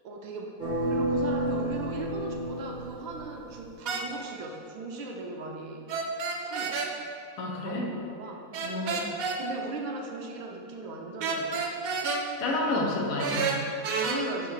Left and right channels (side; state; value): right; late; 4.1 ms